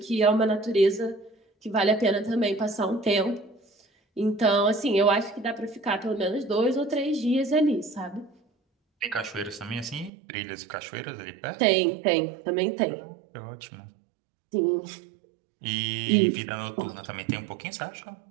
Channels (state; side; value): drops out; left; at 10.1 s